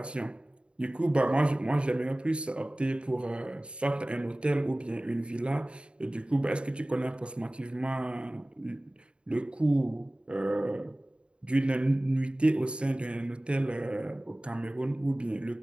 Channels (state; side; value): late; left; 0.055 ms